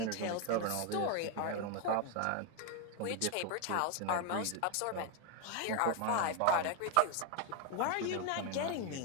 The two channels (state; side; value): different; both; correlation 0.01